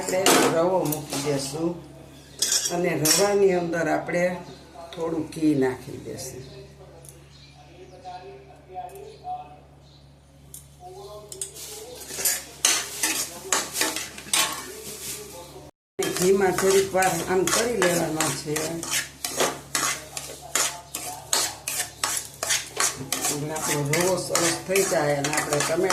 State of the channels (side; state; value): both; identical; correlation 1.00